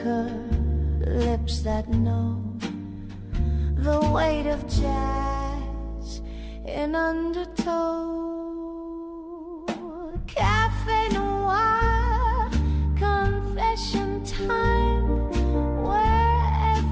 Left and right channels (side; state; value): both; identical; correlation 1.00